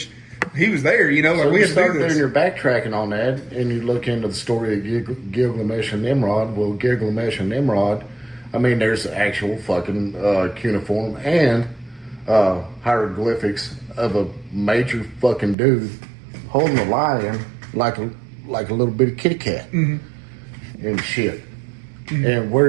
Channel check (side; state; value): left; drops out; at 15.6 s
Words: He was there, So we you had to start do this. doing your backtracking on that, and you look into the story of Gilgamesh and Nimrod. Well, Gilgamesh and Nimrod, I mean, there's actual fucking cuneiform and hieroglyphics of a major fucking dude holding a lion like a little bitty kitty cat and shit. And where